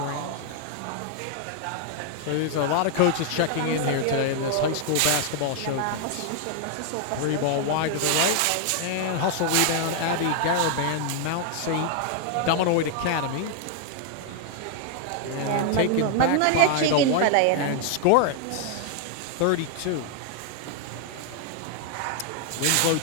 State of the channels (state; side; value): different; both; correlation 0.00